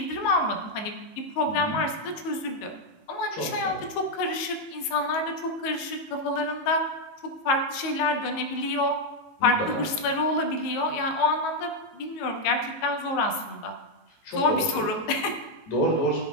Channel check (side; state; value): right; late; 19 ms